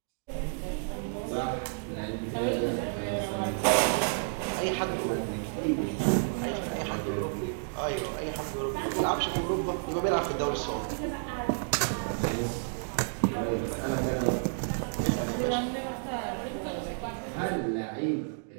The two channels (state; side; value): silent; left; digital silence